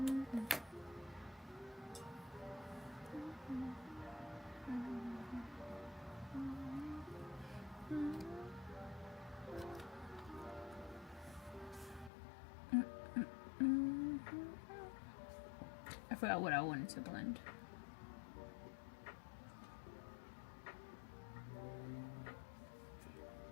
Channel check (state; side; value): drops out; right; at 12.1 s